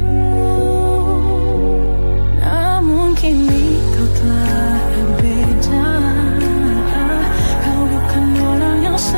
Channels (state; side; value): inverted; both; correlation -1.00